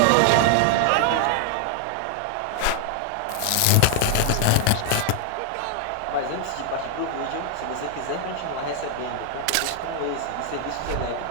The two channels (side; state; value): both; different; correlation 0.00